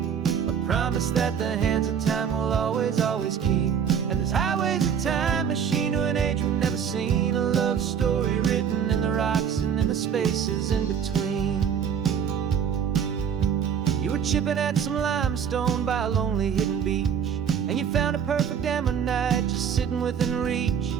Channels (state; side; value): quieter; left; 7.7 dB